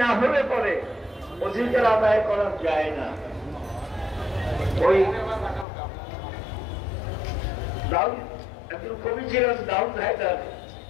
না হলে পরে অধিকার আদায় করা যায় না। ওই দাউদ একজন কবি ছিলেন, দাউদ হায়দার,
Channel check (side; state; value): right; drops out; at 5.7 s